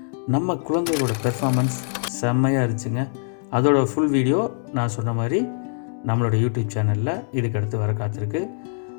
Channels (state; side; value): silent; right; digital silence